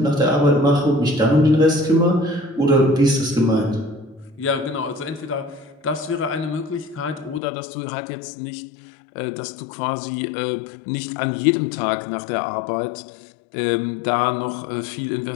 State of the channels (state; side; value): drops out; right; at 7.4 s